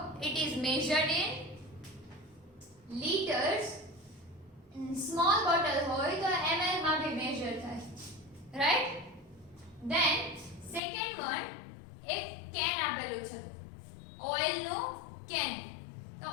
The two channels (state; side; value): drops out; right; at 10.8 s